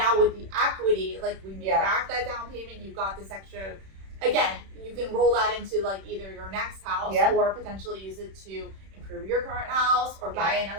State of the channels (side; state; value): left; late; 31 ms